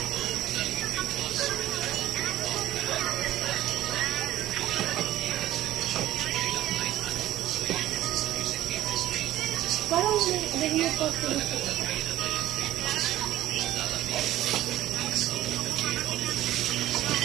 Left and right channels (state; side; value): quieter; left; 14.1 dB